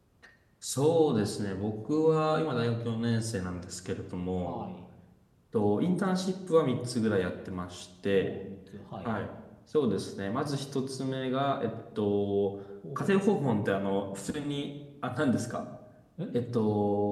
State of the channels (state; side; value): identical; both; correlation 1.00